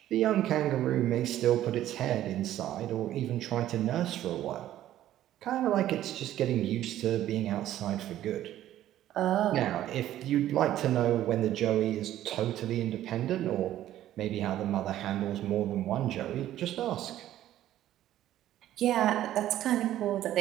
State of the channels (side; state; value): left; quieter; 12.9 dB